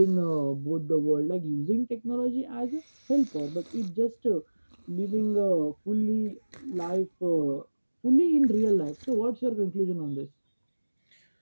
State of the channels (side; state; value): both; inverted; correlation -1.00